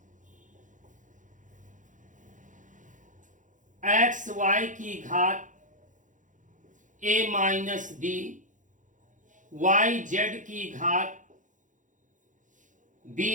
एक्स वाई की घात a minus b Y Z की घात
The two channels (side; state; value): left; late; 0.37 ms